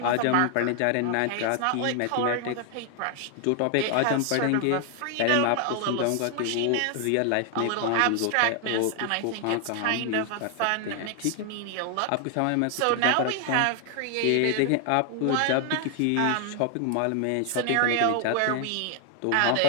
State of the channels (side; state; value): both; different; correlation 0.00